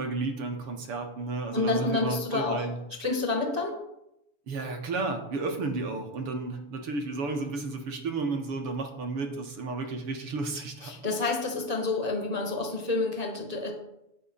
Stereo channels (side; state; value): left; late; 7.0 ms